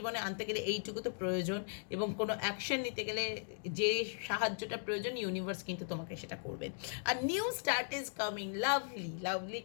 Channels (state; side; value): silent; right; digital silence